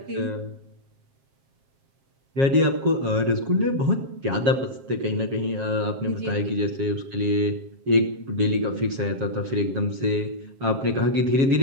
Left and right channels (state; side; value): late; left; 7.4 ms